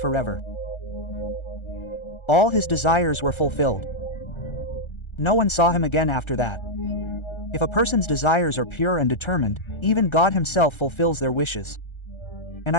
All his desires were fulfilled. No one saw him again after that. If a person's desires are pure and determined, even God himself fulfills their wishes. And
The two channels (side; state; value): right; late; 1.3 ms